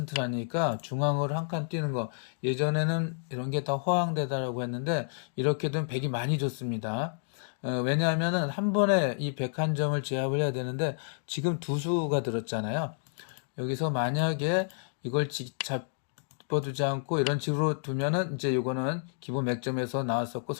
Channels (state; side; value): silent; right; digital silence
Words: 중앙으로 한 칸 뛰는 거 예전에는 이런 게 다 허황되다라고 했는데 이렇게 되면 100이 많이 좋습니다. 왜냐하면은 한 번에 이 101점을 제압을 해야 되는데 지금 두 수가 들었잖아요. 여기서 만약에 이걸 잡아두지 않고 이런 식으로 두면은 이제 이거는 기본 맥점에서 나왔었고